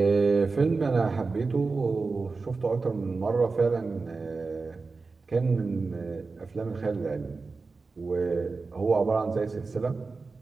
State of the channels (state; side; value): quieter; left; 4.1 dB